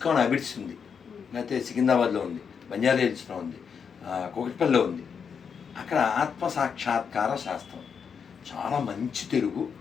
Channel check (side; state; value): right; quieter; 6.6 dB